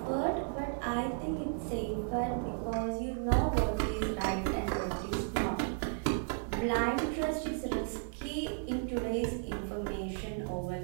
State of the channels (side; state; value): left; silent; 55 dB below the other